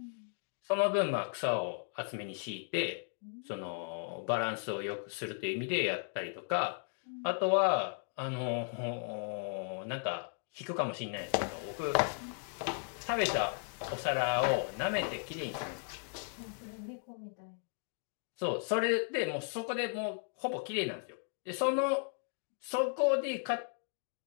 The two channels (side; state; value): right; silent; 54 dB below the other